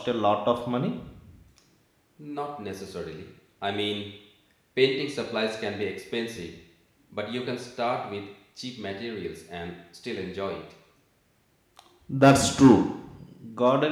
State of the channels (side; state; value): both; identical; correlation 1.00